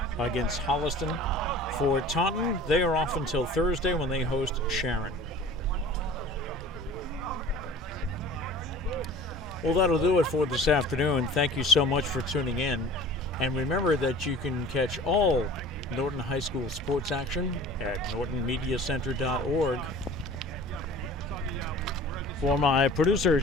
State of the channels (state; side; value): normal; both; correlation 0.42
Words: against Holliston. For Taunton, they are off until Thursday when they host Sharon. Well, that'll do it for this afternoon. Thank you so much for tuning in. And remember that you can catch all Norton High School sports action at nortonmediacenter.org. For my producer,